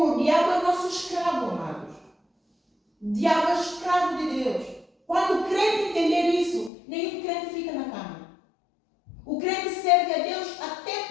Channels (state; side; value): drops out; right; at 6.7 s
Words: diabo é o nosso escravo, amados. O diabo é escravo de Deus. Quando o crente entender isso, nenhum crente fica na cama. O crente serve a Deus até